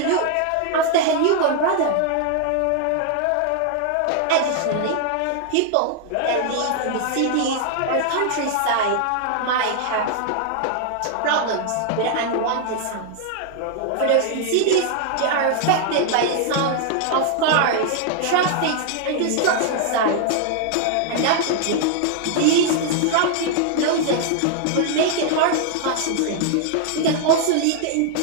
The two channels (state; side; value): different; both; correlation 0.00